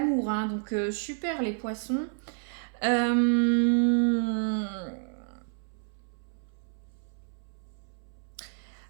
Hein. Donc, super les poissons.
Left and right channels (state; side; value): silent; left; 58 dB below the other